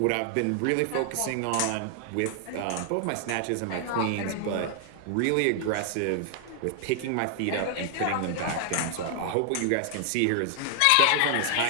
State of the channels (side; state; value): both; different; correlation 0.00